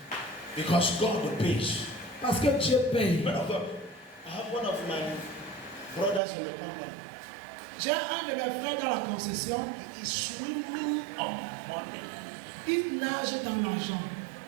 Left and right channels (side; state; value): left; drops out; at 6.2 s